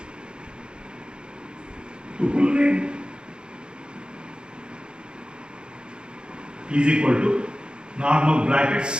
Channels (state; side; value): late; left; 0.051 ms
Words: Tuple name is equal to normal